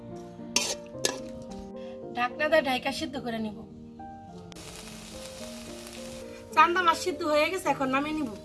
ঢাকনা দিয়ে ঢাকা সিদ্ধ করে নিব। চান্দা মাছ সিদ্ধ হয়ে গেছে, এখন নামিয়ে নিব।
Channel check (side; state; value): both; identical; correlation 1.00